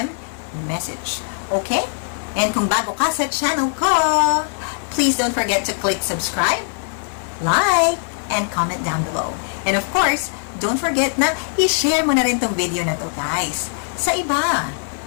a message. Okay? And kung bago ka sa channel ko, please don't forget to click subscribe, like, and comment down below. And of course, don't forget na i-share mo na rin tong video na to, guys, sa iba.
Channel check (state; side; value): silent; right; 65 dB below the other